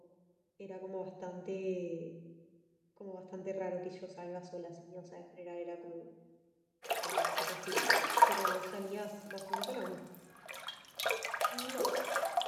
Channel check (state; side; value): identical; both; correlation 1.00